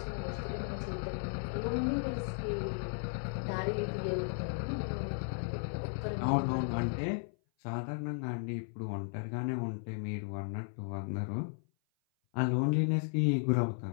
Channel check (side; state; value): right; silent; 54 dB below the other